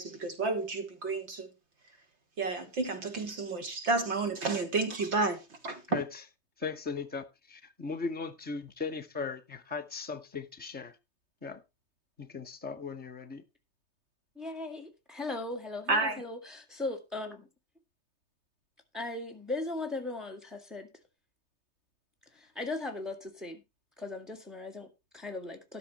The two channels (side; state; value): left; late; 3.2 ms